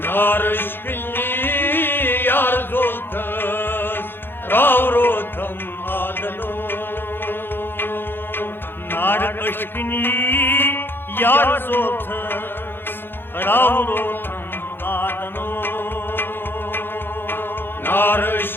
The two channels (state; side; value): late; right; 0.10 ms